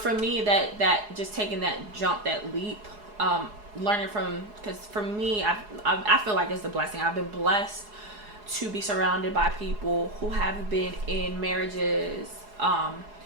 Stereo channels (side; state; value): left; late; 4.8 ms